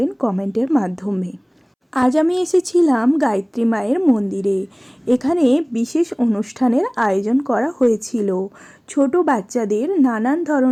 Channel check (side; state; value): both; identical; correlation 1.00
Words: কমেন্টের মাধ্যমে। আজ আমি এসেছিলাম গায়ত্রী মায়ের মন্দিরে। এখানে বিশেষ অনুষ্ঠানের আয়োজন করা হয়েছিল। ছোট বাচ্চাদের নানান